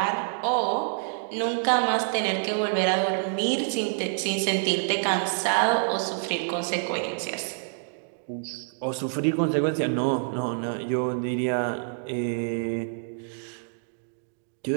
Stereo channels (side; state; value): left; silent; digital silence